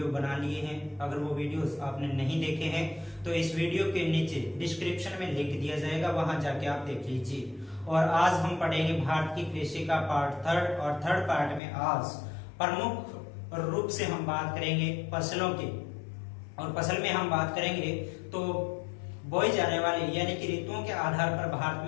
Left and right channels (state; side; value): drops out; right; at 11.6 s